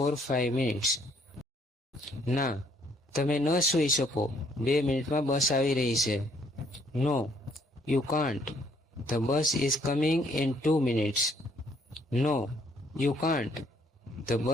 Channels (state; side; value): normal; both; correlation 0.65